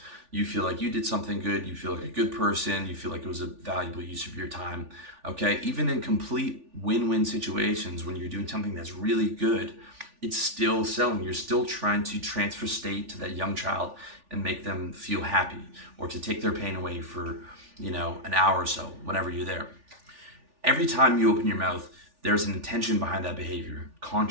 you feel like you did something good, you feel like a good person, you feel like it was a valuable use of your time. Okay, even in complete win-win situations, when you're doing something that's really good, it's still selling. You're still trying to transfer state to that young child and make them feel happy, or to take their pain away for an hour or so, whenever you're there. Every time you open your mouth, there's an intention behind that behavior,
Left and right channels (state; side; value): late; left; 3.4 ms